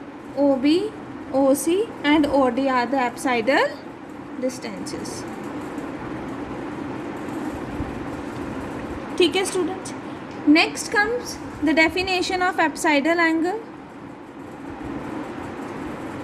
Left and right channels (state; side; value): identical; both; correlation 1.00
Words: O B O C and O D are the apsidal distances. ठीक है students. Next comes the definition of apsidal angle.